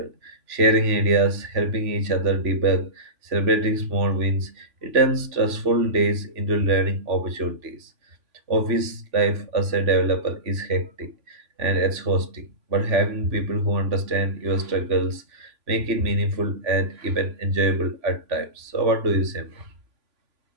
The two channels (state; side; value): late; left; 3.0 ms